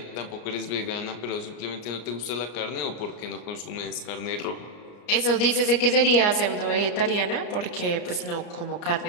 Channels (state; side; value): late; right; 34 ms